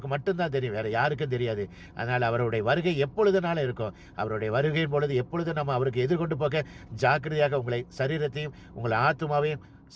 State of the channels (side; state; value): both; identical; correlation 1.00